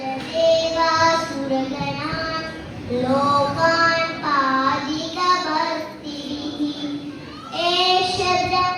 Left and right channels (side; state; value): both; identical; correlation 1.00